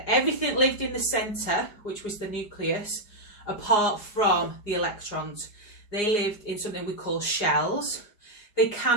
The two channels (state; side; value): late; right; 4.8 ms